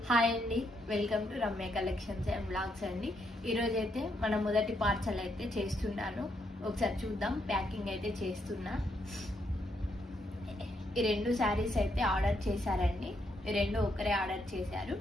Hi అండి, welcome to Ramya collections and blogs అండి. ఈరోజైతే మన మొదటి పార్సల్ అయితే చేస్తున్నాను. ఒకసారి చూద్దాం. ప్యాకింగ్ అయితే చేస్తున్నా. ఈ రెండు శారీస్ అయితే ఆర్డర్ చేశారండి. ఈ రెండు ఒకరే ఆర్డర్ చేశారు.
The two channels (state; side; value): normal; both; correlation 0.77